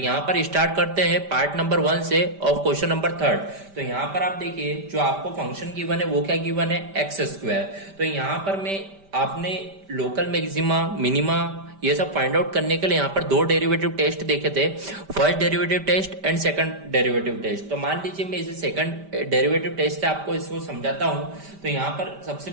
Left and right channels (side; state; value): left; late; 5.1 ms